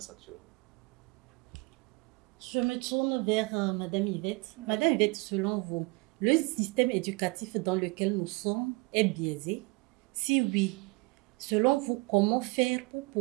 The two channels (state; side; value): quieter; left; 26.6 dB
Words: actuellement. Je me tourne vers Madame Yvette. Madame Yvette, selon vous, le système éducatif dans lequel nous sommes est biaisé? Si oui, selon vous, comment faire pour